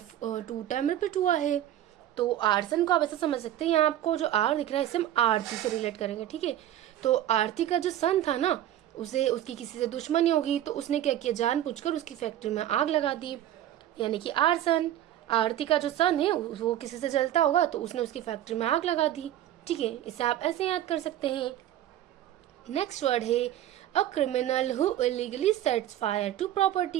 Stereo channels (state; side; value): quieter; left; 12.3 dB